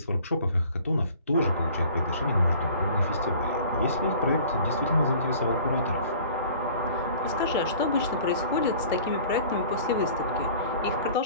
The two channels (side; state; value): both; inverted; correlation -0.48